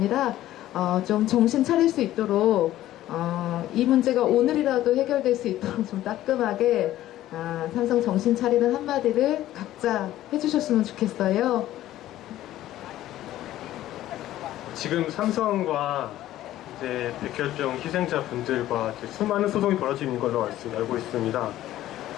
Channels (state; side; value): quieter; right; 14.0 dB